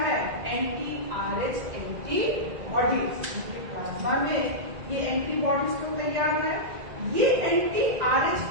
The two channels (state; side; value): late; left; 2.0 ms